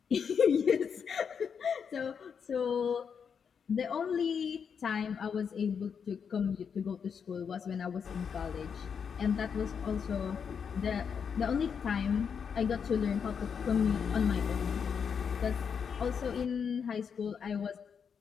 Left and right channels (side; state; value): right; quieter; 6.8 dB